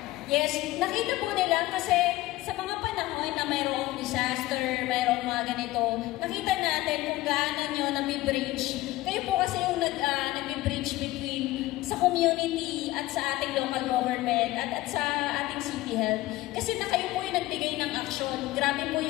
Yes, nakita po nila kasi sa mga panahon na mayroong disaster, mayroong mga ganito, nakita natin kung gaano nyo nami-bridge. Kayo po kasi yung nag-bridge between sa community at sa ating local government at sa ating city health. Kasi na kayo po yung nagbigay ng aksyon. Grabe po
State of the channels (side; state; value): right; quieter; 17.7 dB